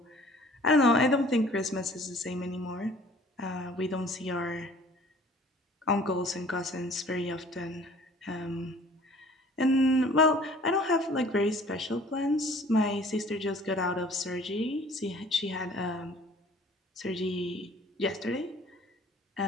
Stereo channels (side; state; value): both; normal; correlation 0.51